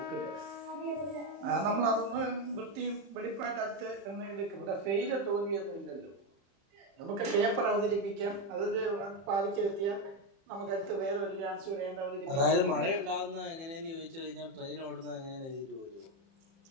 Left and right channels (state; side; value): late; left; 30 ms